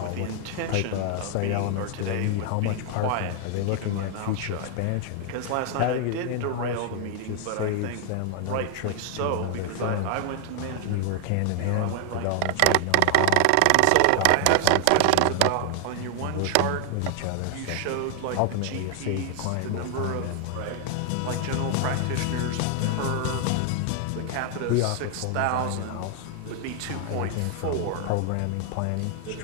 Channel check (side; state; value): both; different; correlation 0.00